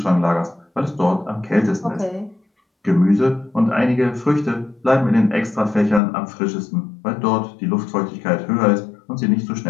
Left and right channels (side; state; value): right; drops out; at 6.0 s